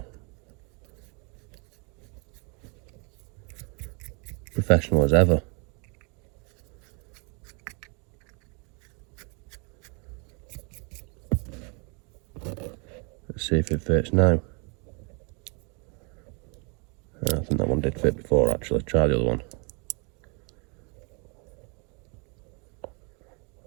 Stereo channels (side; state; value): left; quieter; 33.8 dB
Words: Professional as ever. Let's see if it fits now. I think that one did fit before, actually. Try the other one.